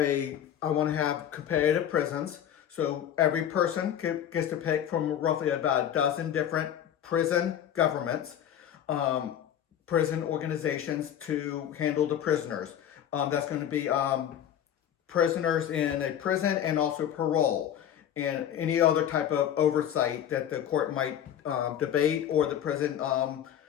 want to have competitive prisons. So every person gets to pick from roughly about a dozen different prison governments, prison organizations to handle the prisoners. That's going to be prisoners in a prison and also parole and any other type of oversight that the court might debate or the prison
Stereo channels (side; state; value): right; quieter; 10.0 dB